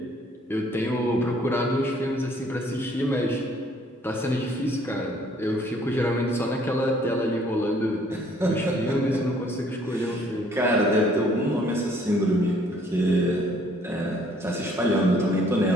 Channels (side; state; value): both; normal; correlation 0.61